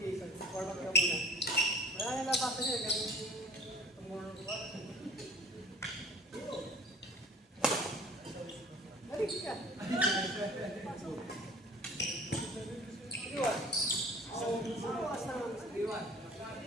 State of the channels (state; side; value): normal; both; correlation 0.47